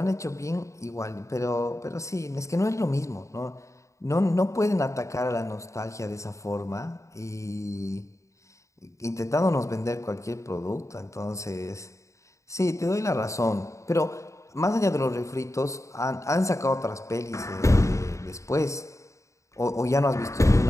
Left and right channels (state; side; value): late; right; 0.15 ms